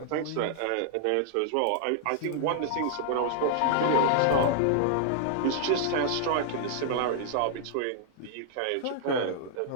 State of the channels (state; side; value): different; both; correlation -0.01